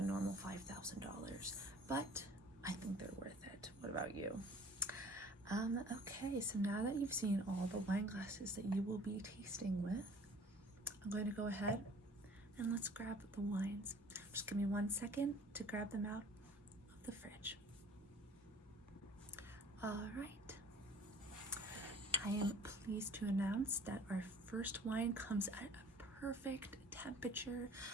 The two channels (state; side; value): normal; both; correlation 0.50